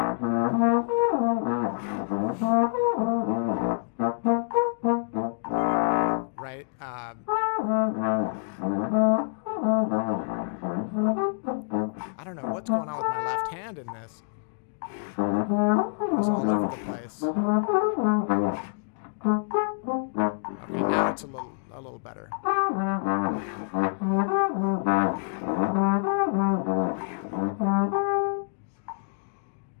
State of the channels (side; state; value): right; silent; digital silence